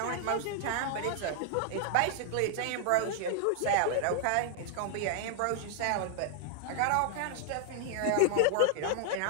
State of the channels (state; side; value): different; both; correlation -0.01